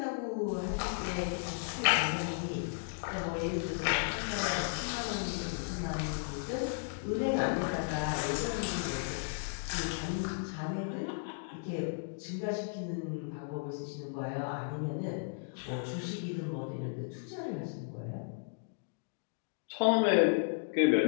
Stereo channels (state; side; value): silent; right; digital silence